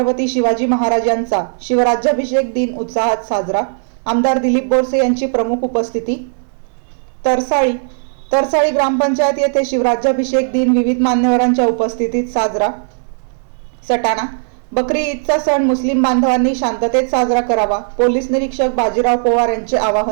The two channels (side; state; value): left; silent; digital silence